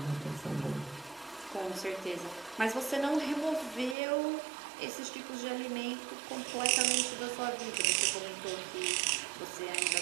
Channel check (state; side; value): drops out; left; at 4.0 s